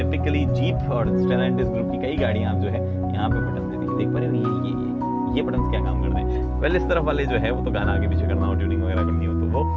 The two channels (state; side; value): identical; both; correlation 1.00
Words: jeep और स्टेलैंटिस ग्रुप की कई गाड़ियाँ आप जो है यहाँ पे बटन देती है, देख पा रहे हो ये बटन क्या काम करते हैं। वेल, इस तरफ वाले जो है वो तो गाना आगे पीछे करना हो, ट्यूनिंग वगैरह करनी हो तो